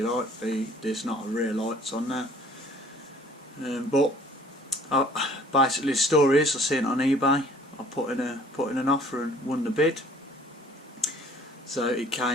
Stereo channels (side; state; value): both; normal; correlation 0.54